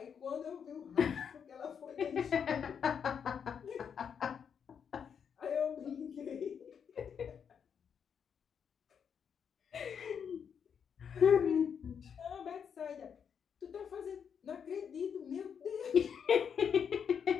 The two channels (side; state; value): right; quieter; 7.3 dB